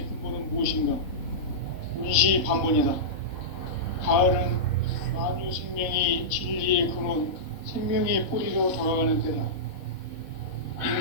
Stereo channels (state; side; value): late; right; 3.8 ms